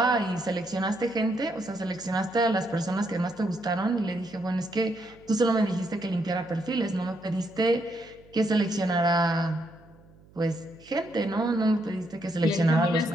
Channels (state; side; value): noise; right; hum, 26 dB below the sound